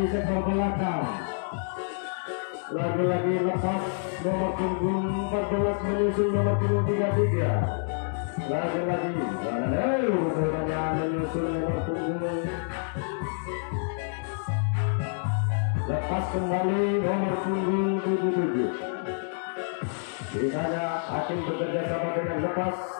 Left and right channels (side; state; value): right; silent; digital silence